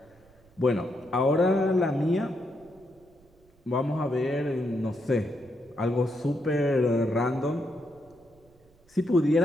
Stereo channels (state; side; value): noise; right; rumble, 30 dB below the sound